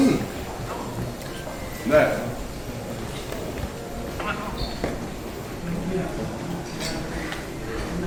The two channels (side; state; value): both; identical; correlation 1.00